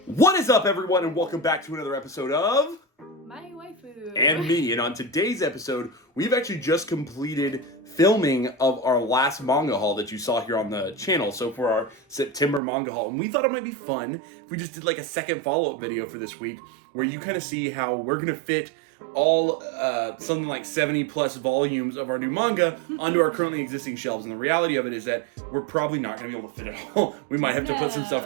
What is up, everyone, and welcome back to another episode of My Waifu and Me. And on today's episode, we've actually just completed filming of our last manga haul that you saw here on the channel. So for our September manga haul, and we thought it might be fun if we just did like a second follow-up video for this week, where you kind of see how we're gonna fit all something like 70 plus volumes of our new manga onto our currently existing shelves. And the reality of it is that we're probably not going to be able to fit it all. We might have to put some stuff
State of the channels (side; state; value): left; drops out; at 12.6 s